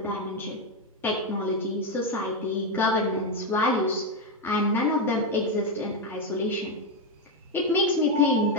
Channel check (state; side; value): normal; both; correlation 0.07